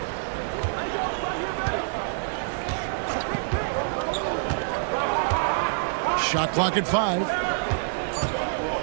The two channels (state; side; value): silent; left; digital silence